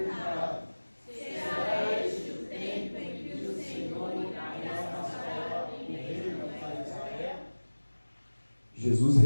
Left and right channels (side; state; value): both; inverted; correlation -1.00